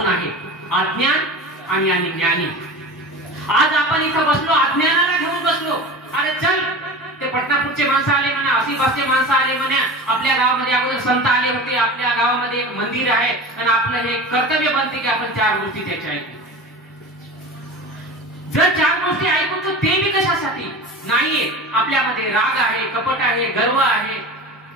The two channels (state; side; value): normal; both; correlation 0.32